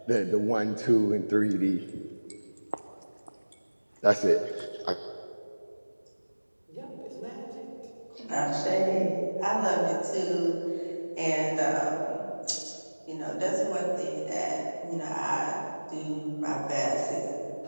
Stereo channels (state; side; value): inverted; both; correlation -1.00